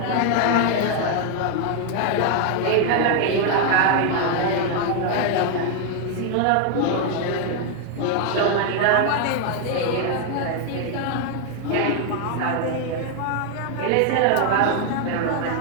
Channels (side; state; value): both; different; correlation 0.00